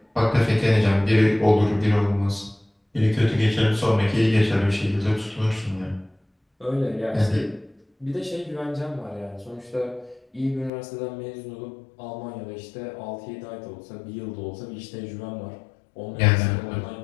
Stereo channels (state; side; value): drops out; right; at 10.7 s